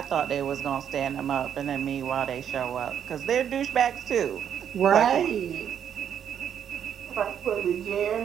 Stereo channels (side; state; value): left; quieter; 8.9 dB